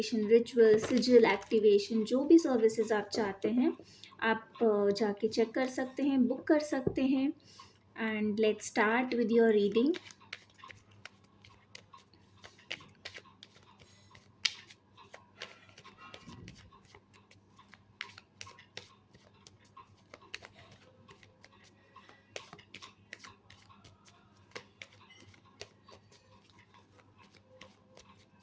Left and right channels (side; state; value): both; identical; correlation 1.00